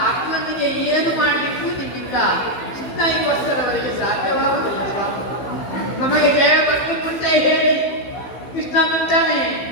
ಅರ್ಜುನನಿಗೆ ಏನು ಮಾಡಲಿಕ್ಕೂ ನಿಮ್ಮಿಂದ ಚಿನ್ನೈವತ್ತರವರೆಗೆ ಸಾಧ್ಯವಾಗುವುದಿಲ್ಲ. ನಮಗೆ ಜಯ ಬಗ್ಗೆ ಮುಂಚೆ ಹೇಳಿ ಕೃಷ್ಣ ಬಂತಾನೆ.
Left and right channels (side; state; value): right; late; 15 ms